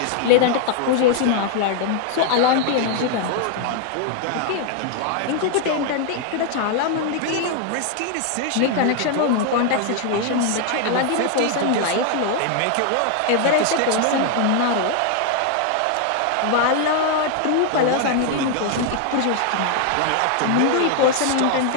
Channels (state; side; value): different; both; correlation 0.00